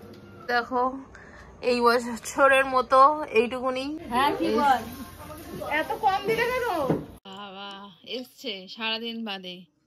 দেখো এই বছরের মতো এইটুকুনি। হ্যাঁ কি বল, এত কম দিলে কেন? বাবা এসছে সারাদিন বাদে।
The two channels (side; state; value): both; identical; correlation 1.00